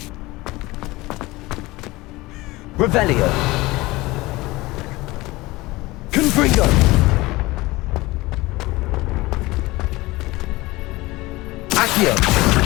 Revelio! Confringo! Accio!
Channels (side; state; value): right; quieter; 20.6 dB